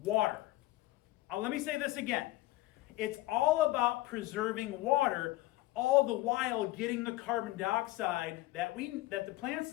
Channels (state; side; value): quieter; right; 18.0 dB